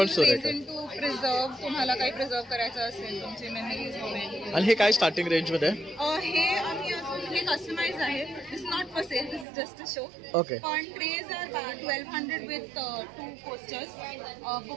resin to preserve. तुम्हाला काही प्रिझर्व करायचं असेल तुमचे मेमरीज वगैरे. आणि हे काय स्टार्टिंग रेंज मध्ये? हे आम्ही हे कस्टमाइज आहे. This not for sale, this is just a show. Okay. पण trays are 1200 with 2 posters.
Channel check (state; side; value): drops out; left; at 9.5 s